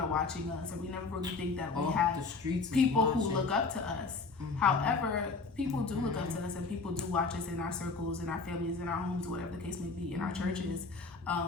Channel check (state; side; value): quieter; right; 4.2 dB